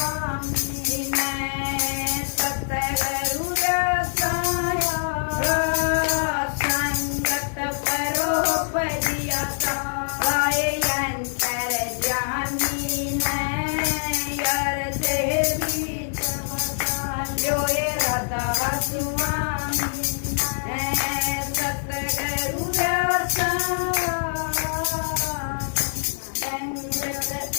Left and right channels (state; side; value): silent; right; digital silence